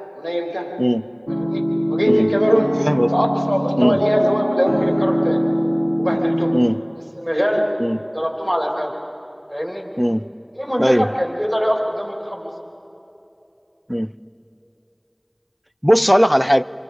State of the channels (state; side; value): identical; both; correlation 1.00